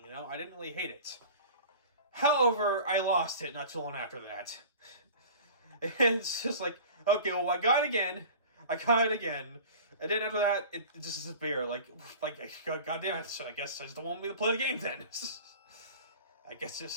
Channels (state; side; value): inverted; both; correlation -0.40